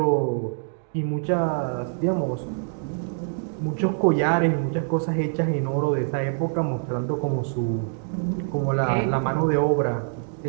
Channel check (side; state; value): left; silent; digital silence